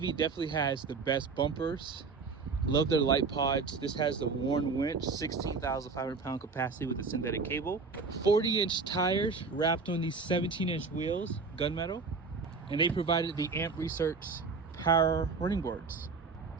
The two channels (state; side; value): quieter; left; 4.7 dB